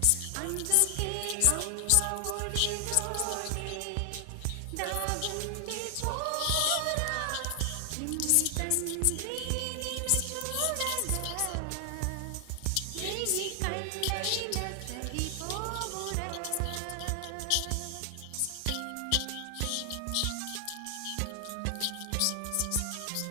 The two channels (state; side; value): different; both; correlation 0.00